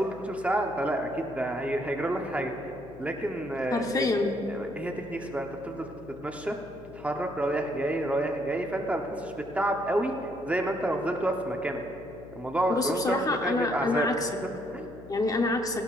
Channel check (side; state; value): left; noise; hum, 17 dB below the sound